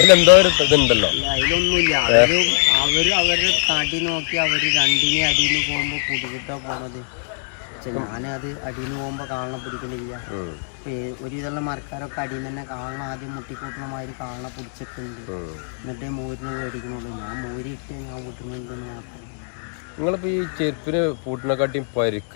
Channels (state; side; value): silent; right; digital silence